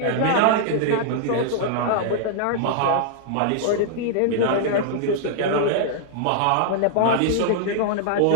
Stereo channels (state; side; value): different; both; correlation -0.01